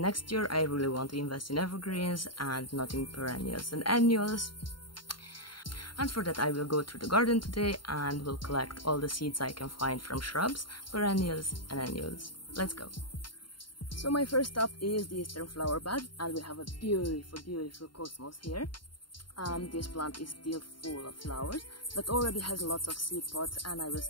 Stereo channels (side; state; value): right; late; 0.72 ms